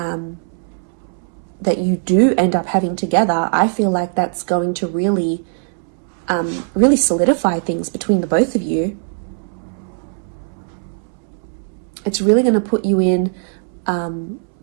you do end up having together, I feel like that's going to really solidify things between the both of you. It's really going to put you in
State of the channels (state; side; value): silent; left; 66 dB below the other